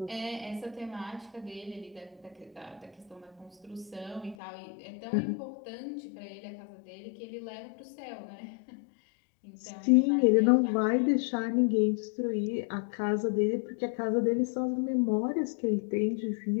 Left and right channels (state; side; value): drops out; right; at 4.4 s